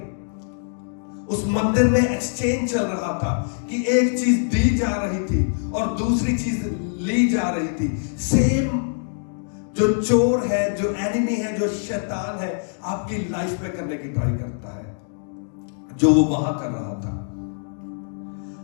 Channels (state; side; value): silent; right; digital silence